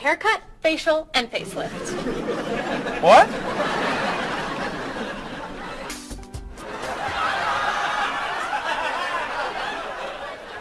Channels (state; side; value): identical; both; correlation 1.00